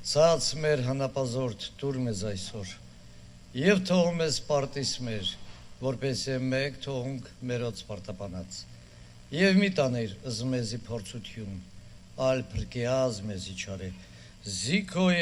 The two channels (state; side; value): identical; both; correlation 1.00